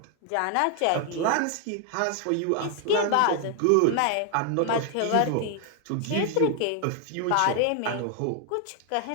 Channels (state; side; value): different; both; correlation 0.00